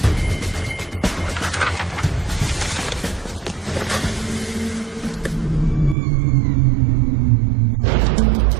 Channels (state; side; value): drops out; left; at 6.0 s